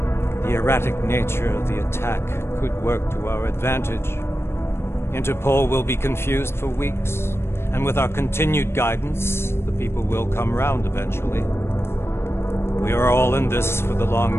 the erratic nature of the attack could work to our advantage. Interpol will be confused for weeks, and with our continued guidance, the people will come round eventually. We are all in this for the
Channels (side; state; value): right; late; 0.12 ms